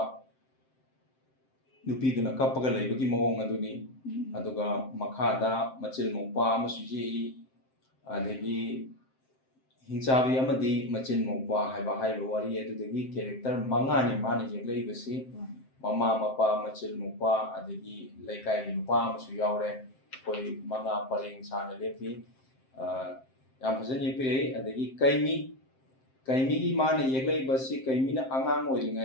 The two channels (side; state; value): right; late; 7.6 ms